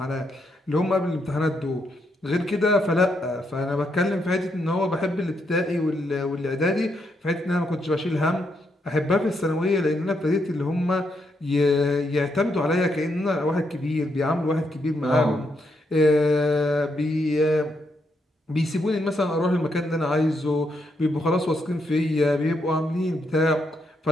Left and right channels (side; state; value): both; normal; correlation 0.78